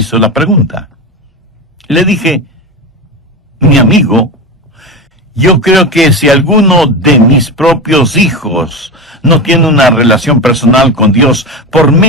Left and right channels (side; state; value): both; normal; correlation 0.21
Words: la pregunta? Le dije, mi amigo, yo creo que si alguno de mis propios hijos no tiene una relación personal con Dios por